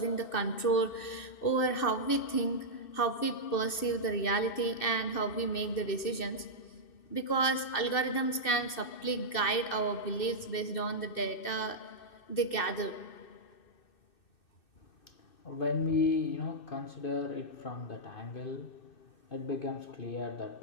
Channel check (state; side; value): late; right; 2.6 ms